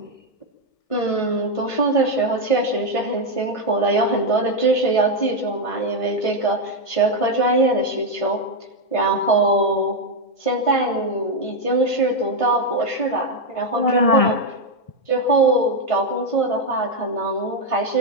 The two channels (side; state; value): right; late; 1.5 ms